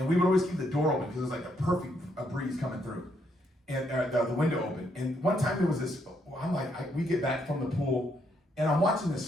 we would always keep the door open because it was like a perfect breeze coming through, and the window open. And one time there was this, we get back from the pool, and I'm watching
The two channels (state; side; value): normal; both; correlation 0.74